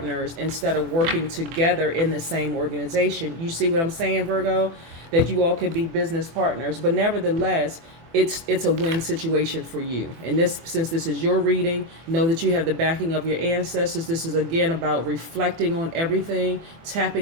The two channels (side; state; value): left; late; 24 ms